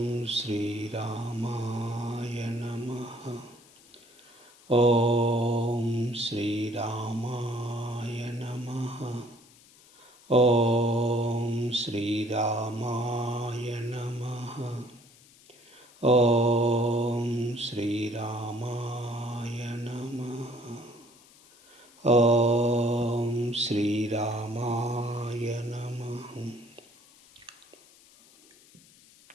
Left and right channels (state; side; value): noise; left; hiss, 26 dB below the sound